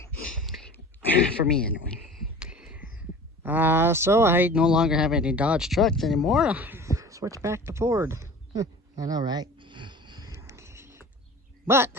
For me, anyway. So I no longer have any Dodge trucks anymore. Switch back to Ford. I know, right? But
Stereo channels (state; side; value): normal; both; correlation 0.40